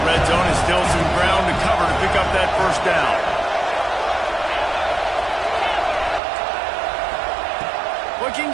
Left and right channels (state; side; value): drops out; left; at 6.2 s